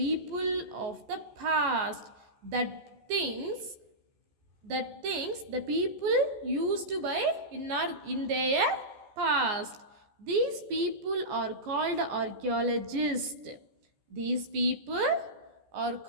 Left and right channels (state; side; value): late; left; 14 ms